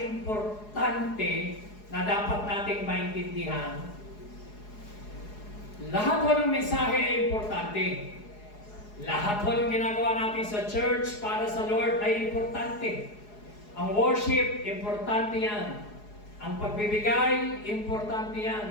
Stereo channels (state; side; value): late; right; 4.8 ms